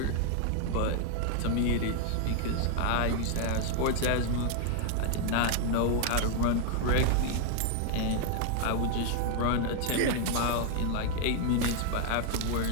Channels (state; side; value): different; both; correlation 0.00